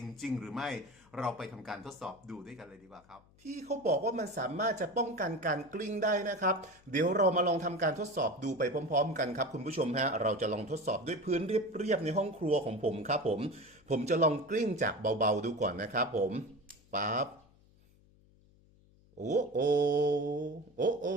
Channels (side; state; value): left; noise; hum, 29 dB below the sound